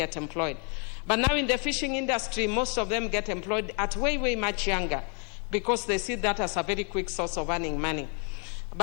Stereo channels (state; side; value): quieter; right; 37.8 dB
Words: employed. But now in the fishing industry, most of them get employed at way, way much younger, because they see that as a very quick source of earning money.